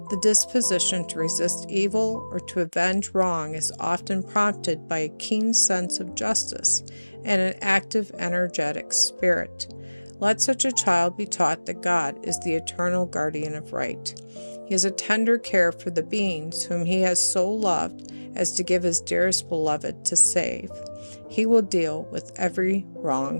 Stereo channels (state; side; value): inverted; both; correlation -1.00